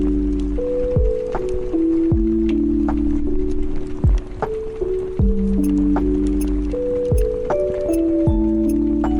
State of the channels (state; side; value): identical; both; correlation 1.00